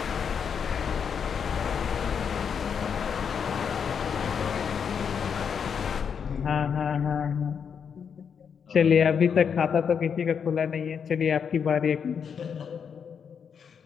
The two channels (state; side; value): quieter; right; 7.0 dB